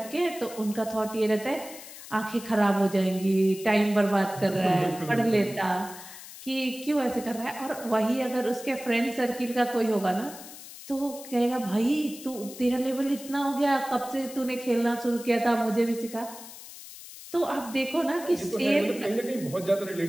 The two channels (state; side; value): noise; left; hiss, 15 dB below the sound